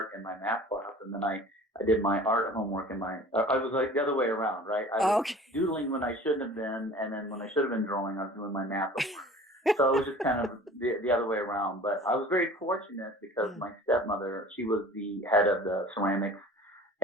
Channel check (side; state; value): both; normal; correlation 0.44